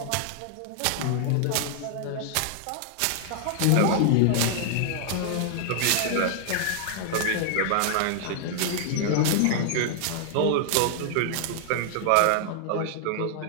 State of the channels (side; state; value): both; different; correlation -0.01